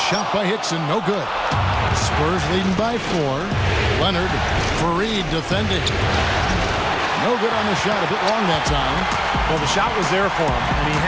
by Hickson, no good. Spurs leading by 4. Leonard, Fareed defending. No good on the shot, a bit long that time. Well, the shot was there for him, and he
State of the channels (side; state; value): both; identical; correlation 1.00